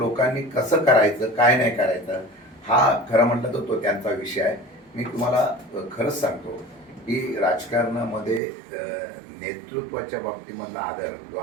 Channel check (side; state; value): left; drops out; at 8.4 s